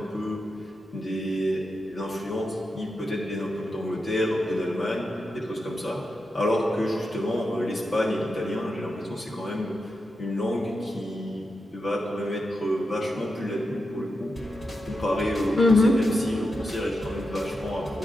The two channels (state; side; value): normal; both; correlation 0.88